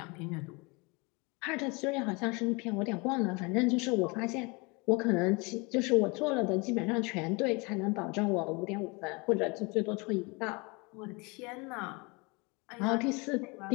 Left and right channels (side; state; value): right; quieter; 28.3 dB